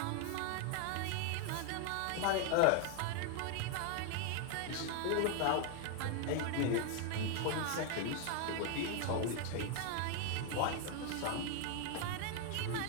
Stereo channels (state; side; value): different; both; correlation 0.00